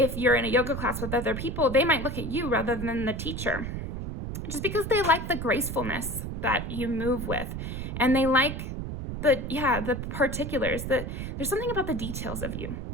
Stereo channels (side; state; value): right; noise; rumble, 5 dB below the sound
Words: you're in a yoga class with other people, they might look at you rather than the teacher. Just because they like the gracefulness that you move with, and they like the particulars, there's something about the details of you